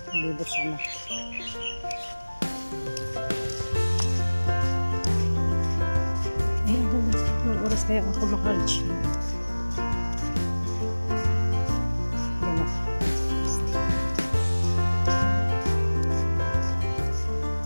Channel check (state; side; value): inverted; both; correlation -1.00